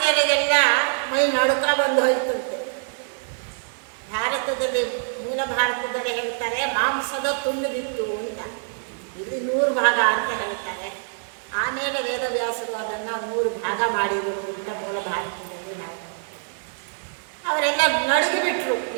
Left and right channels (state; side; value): silent; left; 62 dB below the other